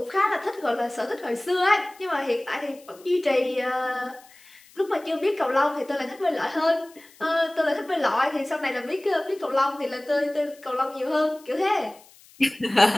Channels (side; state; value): left; noise; hiss, 26 dB below the sound